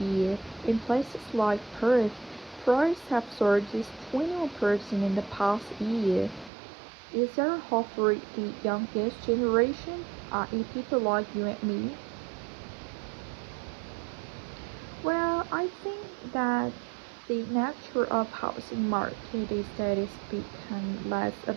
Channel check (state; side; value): drops out; left; at 6.5 s